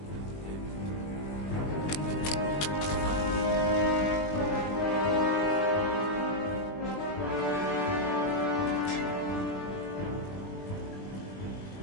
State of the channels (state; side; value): late; right; 20 ms